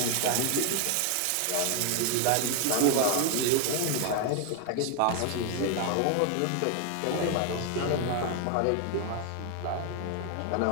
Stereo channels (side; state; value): both; different; correlation 0.00